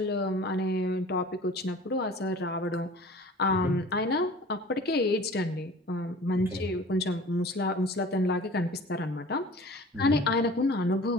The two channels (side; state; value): both; normal; correlation 0.44